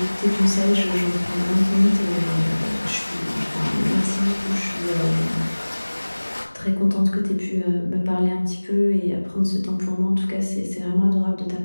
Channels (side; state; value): both; inverted; correlation -1.00